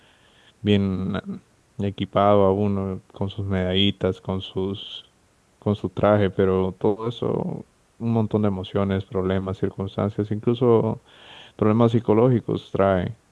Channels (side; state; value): both; identical; correlation 1.00